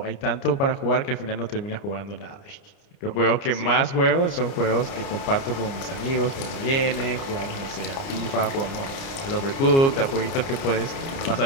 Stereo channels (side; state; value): right; late; 30 ms